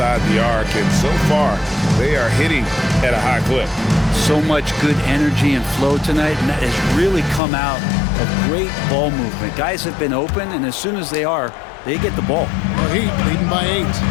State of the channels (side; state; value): right; drops out; at 7.4 s